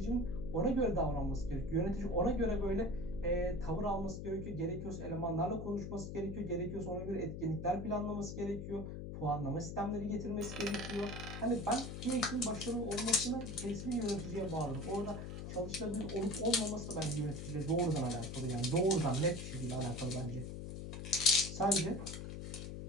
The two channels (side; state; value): left; noise; hum, 7 dB below the sound